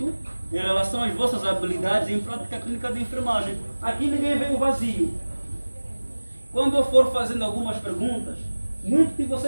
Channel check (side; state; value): both; inverted; correlation -1.00